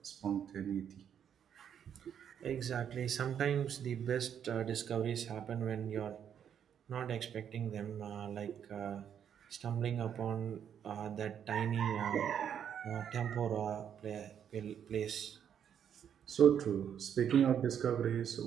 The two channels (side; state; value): left; quieter; 8.7 dB